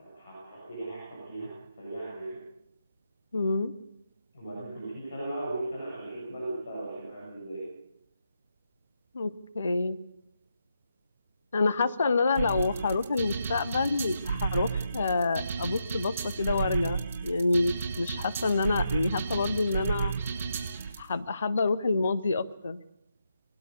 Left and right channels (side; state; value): both; inverted; correlation -0.82